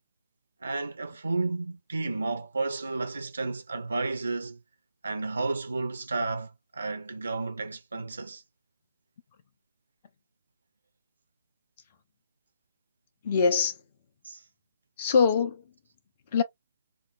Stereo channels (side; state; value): both; inverted; correlation -0.77